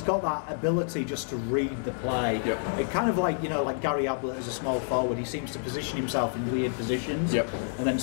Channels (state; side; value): silent; right; digital silence